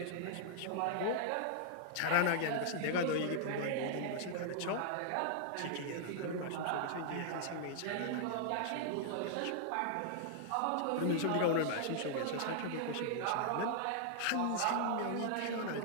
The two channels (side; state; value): both; different; correlation -0.01